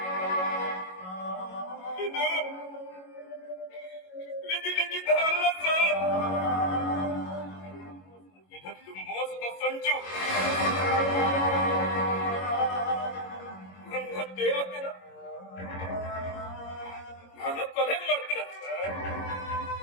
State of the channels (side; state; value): right; late; 22 ms